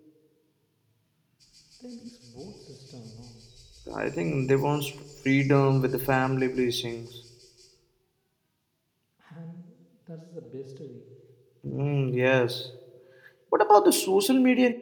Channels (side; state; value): both; identical; correlation 1.00